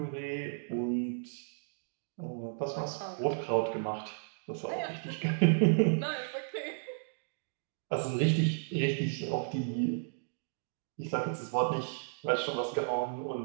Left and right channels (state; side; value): silent; left; digital silence